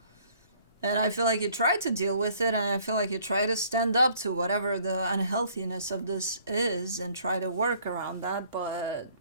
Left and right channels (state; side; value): inverted; both; correlation -0.59